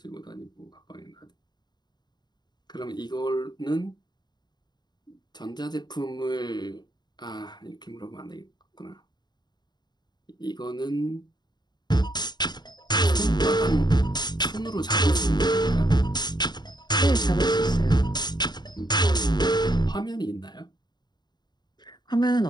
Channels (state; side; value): late; right; 0.21 ms